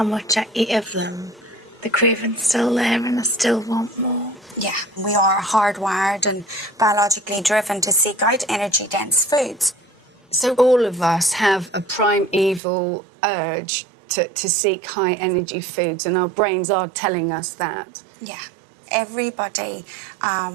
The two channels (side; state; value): left; drops out; at 12.6 s